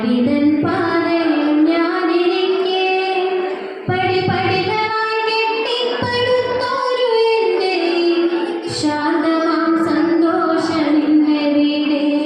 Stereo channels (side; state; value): both; identical; correlation 1.00